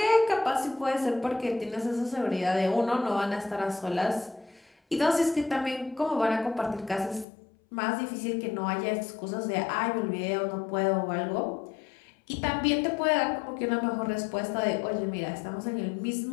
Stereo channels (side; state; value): right; drops out; at 7.2 s